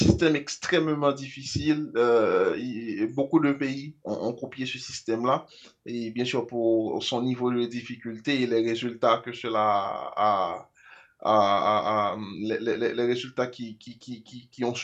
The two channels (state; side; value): identical; both; correlation 1.00